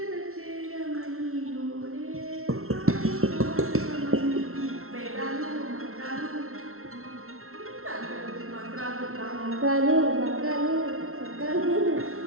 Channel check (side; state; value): left; late; 0.62 ms